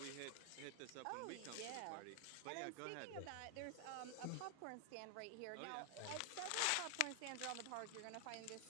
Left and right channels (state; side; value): different; both; correlation 0.00